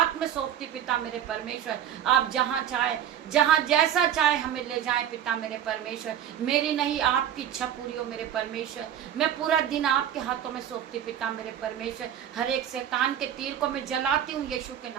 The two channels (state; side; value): quieter; left; 9.9 dB